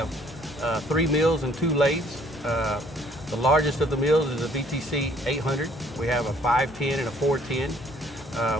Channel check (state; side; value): normal; both; correlation 0.61